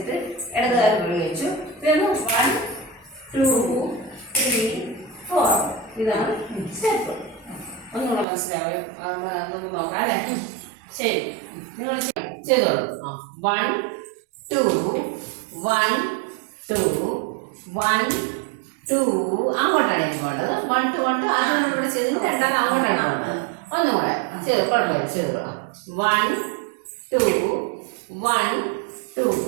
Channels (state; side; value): drops out; left; at 8.2 s